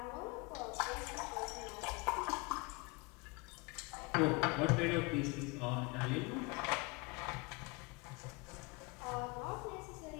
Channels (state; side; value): quieter; right; 27.5 dB